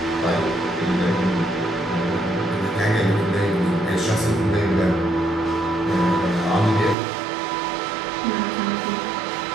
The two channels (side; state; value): left; drops out; at 7.0 s